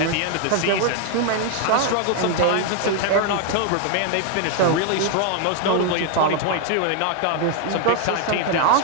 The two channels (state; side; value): different; both; correlation 0.00